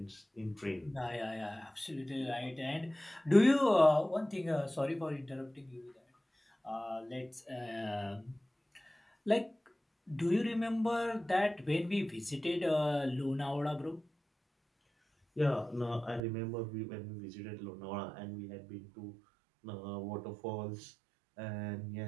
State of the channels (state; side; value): drops out; left; at 16.2 s